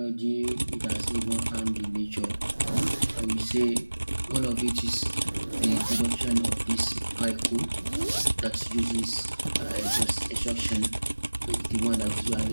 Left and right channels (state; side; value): inverted; both; correlation -1.00